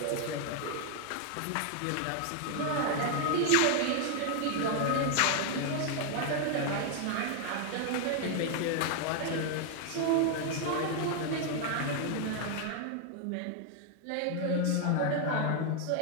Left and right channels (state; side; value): different; both; correlation 0.00